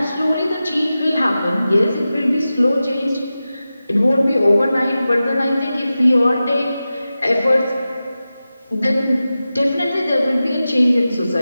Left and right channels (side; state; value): both; inverted; correlation -0.94